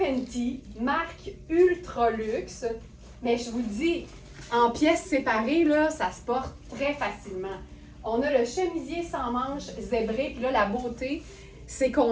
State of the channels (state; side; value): identical; both; correlation 1.00